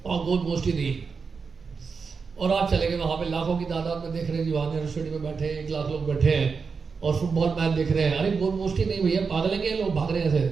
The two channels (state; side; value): quieter; left; 5.2 dB